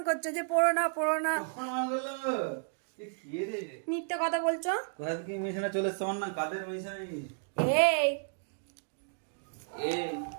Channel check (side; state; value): left; silent; digital silence